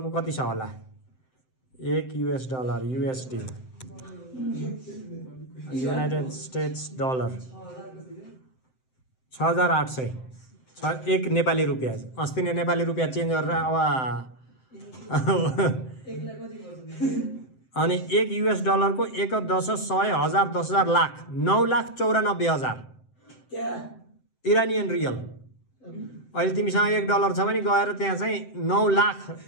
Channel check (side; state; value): right; late; 7.8 ms